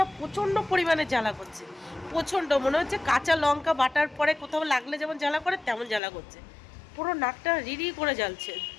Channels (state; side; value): drops out; right; at 6.0 s